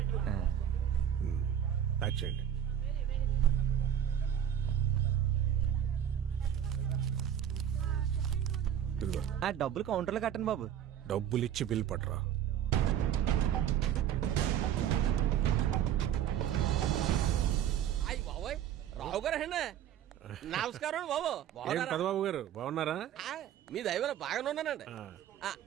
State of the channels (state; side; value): quieter; left; 10.0 dB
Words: ప్యాక్ చేయండి. డబ్బులు కౌంటర్లో కట్టండి బాబు. డబ్బులు ఇచ్చి బిల్ పట్టరా. అయ్యి బాబోయ్, రావు గారు అండి. నమస్కారం బాబు. పెదబాబు గారు బాగున్నారా? మీ దైవం బాగానే ఉన్నానండి.